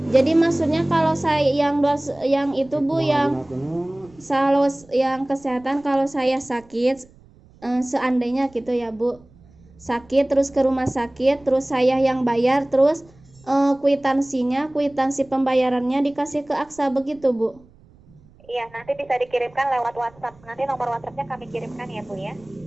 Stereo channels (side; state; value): right; noise; rumble, 27 dB below the sound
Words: Jadi maksudnya kalau saya yang itu Bu yang kesehatan kalau saya sakit seandainya gitu ya Bu. Sakit terus ke rumah sakit terus saya yang bayar terus kwitansi pembayarannya dikasih ke Aksa begitu Bu. Iya, nanti bisa dikirimkan lewat WhatsApp. Nanti nomor WhatsAppnya kami kirimkan ya Bu ya.